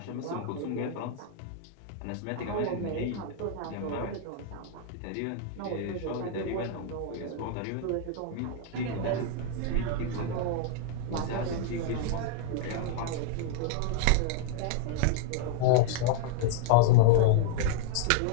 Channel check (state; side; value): different; both; correlation -0.01